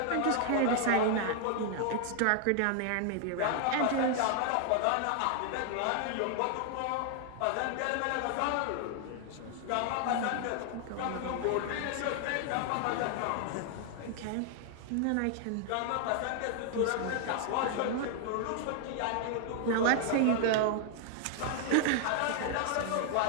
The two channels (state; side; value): different; both; correlation 0.00